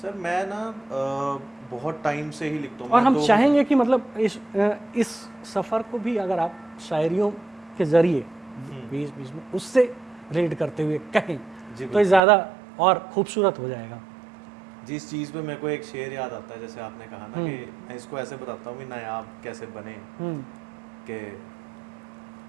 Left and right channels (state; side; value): drops out; left; at 12.2 s